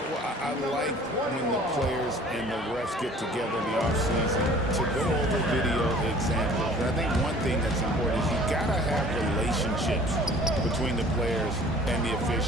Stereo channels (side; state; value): both; normal; correlation 0.50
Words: Well, I like when the players and the refs get together in the offseason to go over video examples. And I think one thing that's important is you got to have relationships between the players and the